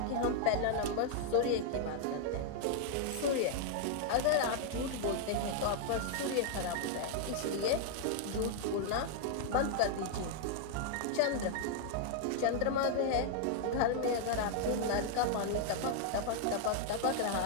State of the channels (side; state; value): both; different; correlation -0.01